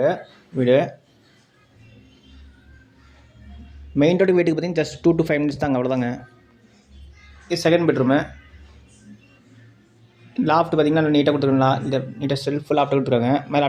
வீடு. மெயின் ரோடு வீட்டுக்கு பார்த்திங்கன்னா ஜஸ்ட் 2 to 5 மினிட்ஸ் தாங்க, அவ்வளோதாங்க. இது செகண்ட் பெட்ரூமு. லாஃப்ட் பார்த்திங்கன்னா நீட்டாக கொடுத்துருக்காங்களா, இல்லை நீட்டாக செல்ஃப் லாஃப்ட் கொடுத்துருக்காங்க. மேலே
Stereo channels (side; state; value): both; identical; correlation 1.00